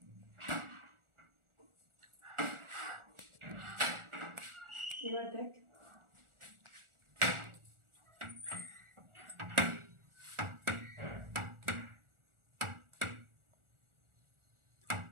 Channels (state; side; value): late; left; 1.4 ms